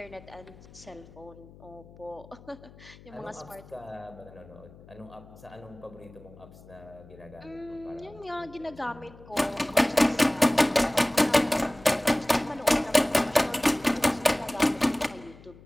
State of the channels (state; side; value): noise; left; hum, 21 dB below the sound